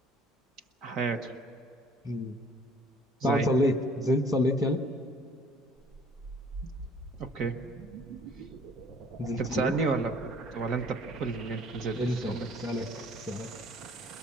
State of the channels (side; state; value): both; normal; correlation 0.55